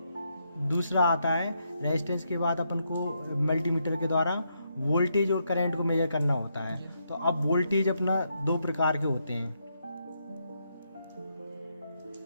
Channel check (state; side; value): inverted; both; correlation -0.79